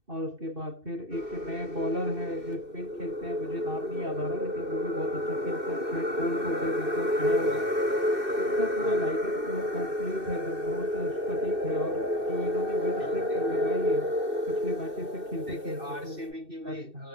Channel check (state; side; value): late; left; 2.6 ms